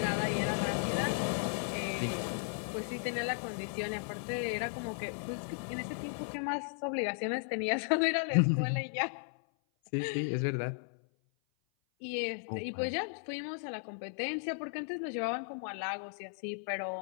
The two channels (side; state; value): right; silent; 54 dB below the other